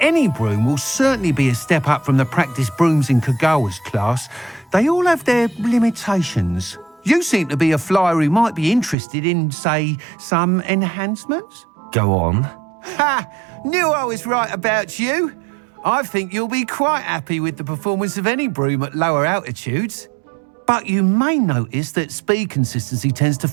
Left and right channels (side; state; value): left; drops out; at 9.0 s